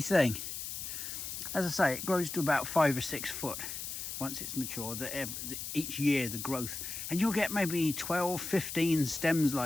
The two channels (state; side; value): noise; left; hiss, 6 dB below the sound